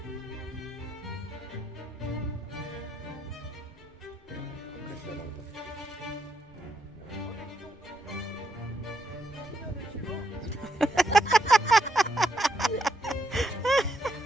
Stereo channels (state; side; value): normal; both; correlation 0.78